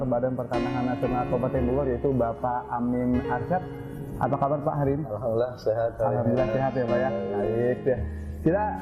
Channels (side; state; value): both; identical; correlation 1.00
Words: Badan Pertanahan Nasional Kabupaten Bogor, yaitu Bapak Amin Arsyad. Apa kabar Pak hari ini? Alhamdulillah sehat. Alhamdulillah sehat ya Pak ya. Baik ya. Kita